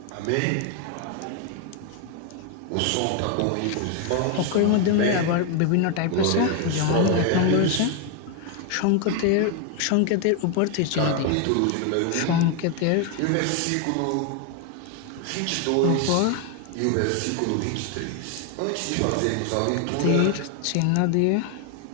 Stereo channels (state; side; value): different; both; correlation 0.01